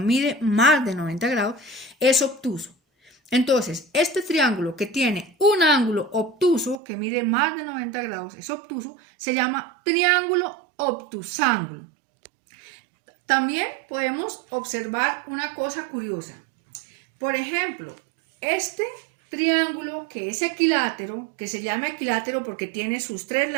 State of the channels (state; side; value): drops out; left; at 6.8 s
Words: más de 90 grados, es obtuso. Entonces, este triángulo que tiene un ángulo obtuso, que mide más de 90 grados, es obtuso, se llama triángulo obtusángulo. También podemos observar una cosa curiosa. Por ejemplo, este triángulo que es equilátero, que se llama equilátero porque tiene sus tres